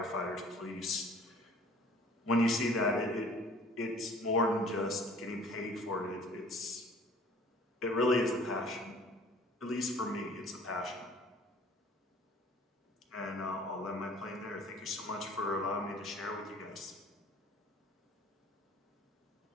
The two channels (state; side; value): normal; both; correlation 0.50